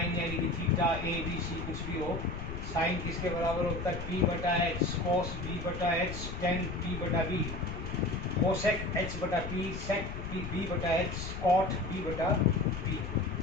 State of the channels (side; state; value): left; noise; rumble, 7 dB below the sound